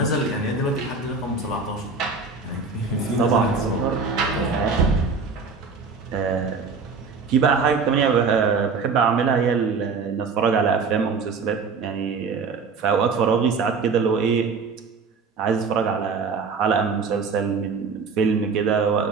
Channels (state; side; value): quieter; left; 4.9 dB